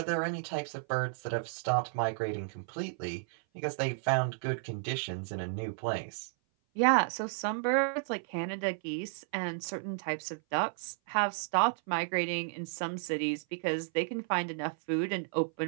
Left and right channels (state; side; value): silent; left; 56 dB below the other